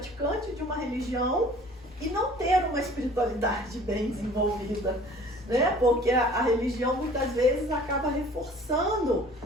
de uma religião e não ter uma espiritualidade bem desenvolvida, né? Porque a religião muitas vezes acaba reforçando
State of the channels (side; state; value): both; normal; correlation 0.49